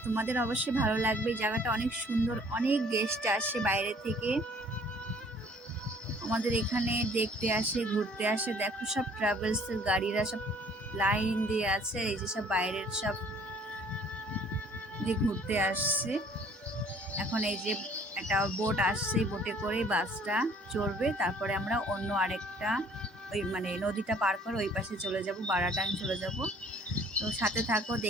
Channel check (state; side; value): normal; both; correlation 0.56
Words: তোমাদের অবশ্যই ভালো লাগবে। জায়গাটা অনেক সুন্দর, অনেক গেস্ট আসে বাইরে থেকে আমাদের এখানে দেখতে আসে, ঘুরতে আসে। দেখো সব ট্রাভেলসের গাড়িরা সব লাইন দিয়ে আছে। এই যে সব বাইরের সব দিয়ে ঘুরতে আসছে। এখন এই যে একটা বোট আসছে, বোটে করে বাসটা চড়বে, তারপরে আমরা অন্য আরেকটা ওই নদীটা পার করে ওই পাশে চলে যাব, বারাটাং চলে যাব। তো সাথে থাকো,